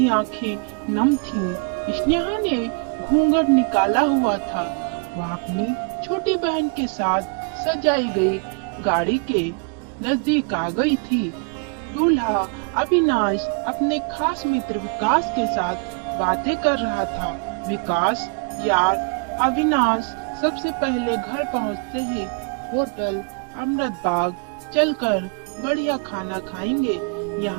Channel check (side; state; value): left; quieter; 36.5 dB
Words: आंखें नम थीं। स्नेहा ने घूंघट निकाला हुआ था। वह अपनी छोटी बहन के साथ सजाई गई गाड़ी के नजदीक आ गई थी। दूल्हा अविनाश अपने खास मित्र विकास के साथ बातें कर रहा था। विकास, यार, अविनाश सबसे पहले घर पहुंचते ही होटल अमृत बाग चलकर बढ़िया खाना खाएंगे।